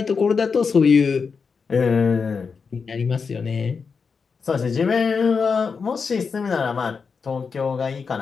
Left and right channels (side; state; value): right; quieter; 5.4 dB